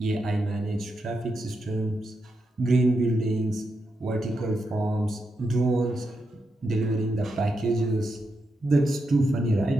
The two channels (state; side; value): normal; both; correlation 0.85